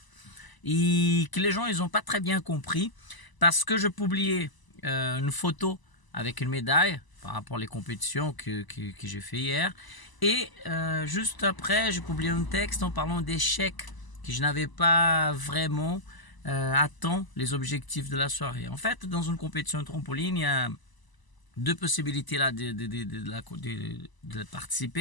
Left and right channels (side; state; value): right; late; 1.0 ms